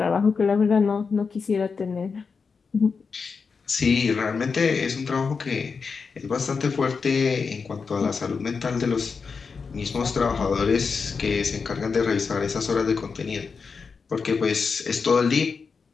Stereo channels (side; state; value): right; quieter; 5.2 dB